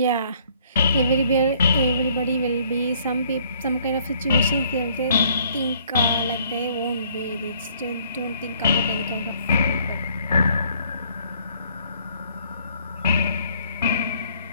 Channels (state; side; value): inverted; both; correlation -0.62